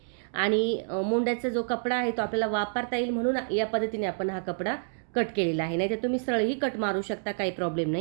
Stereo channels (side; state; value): left; silent; digital silence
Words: आणि मोंड्याचा जो कपडा आहे तो आपल्याला वापरता येईल म्हणून या पद्धतीने आपण हा कपडा कट केलेला आहे. नाही तर तुम्ही सरळही कट मारू शकता, काही प्रॉब्लेम